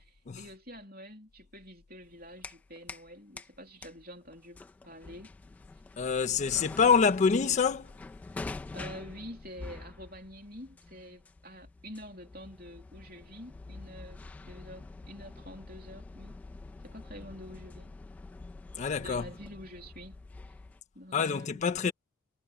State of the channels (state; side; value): quieter; right; 5.2 dB